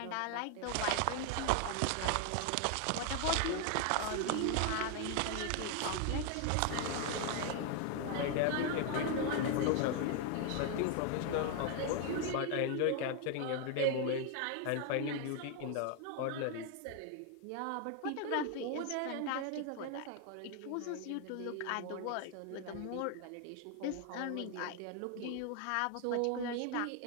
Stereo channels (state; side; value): different; both; correlation 0.01